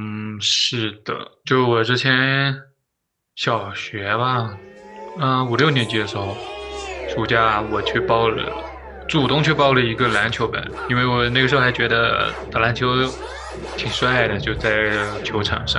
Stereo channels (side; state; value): both; identical; correlation 1.00